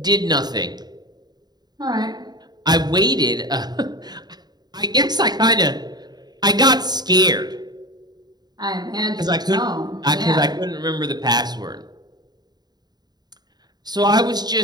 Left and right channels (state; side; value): late; left; 0.20 ms